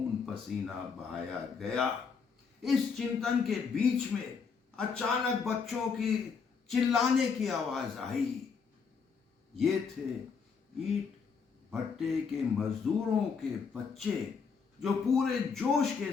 पसीना बहाया गया? इस चिंतन के बीच में अचानक बच्चों की चिल्लाने की आवाज आई। ये थे ईंट भट्टे के मजदूरों के बच्चे, जो पूरे जोश के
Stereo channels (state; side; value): quieter; right; 5.7 dB